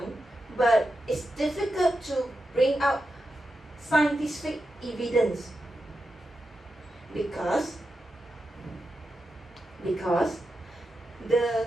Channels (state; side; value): normal; both; correlation 0.89